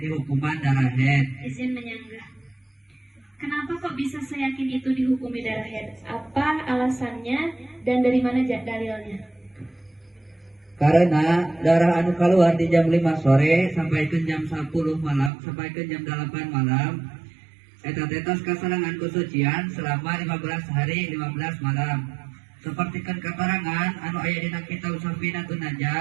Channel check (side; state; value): left; drops out; at 15.3 s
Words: hukuman darah haid. Izin menyanggah. Kenapa kok bisa seyakin itu dihukumi darah haid? Apa alasannya dan dari mana dalilnya? Karena darah anu keluar di jam 5 sore sampai ke jam 10 malam sampai ke jam 8 malam eta tetos kasarangan kesucian selama 15 hari 15 malam. Sapertikeun katerangan anu aya dina kitab Safinatun